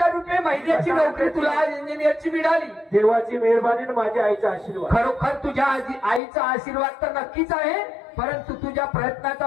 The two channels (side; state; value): right; drops out; at 6.2 s